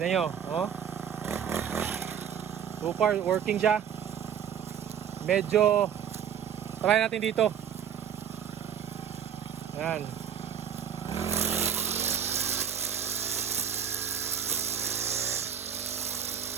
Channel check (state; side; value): quieter; left; 8.5 dB